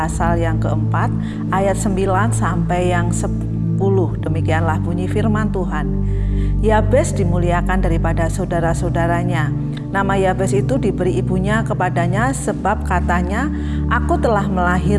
yang keempat ayat 9 sampai yang 10. Demikianlah bunyi firman Tuhan. Yabes dimuliakan daripada saudara-saudaranya. Nama Yabes itu diberi ibunya kepadanya sebab katanya, "Aku telah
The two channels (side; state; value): both; identical; correlation 1.00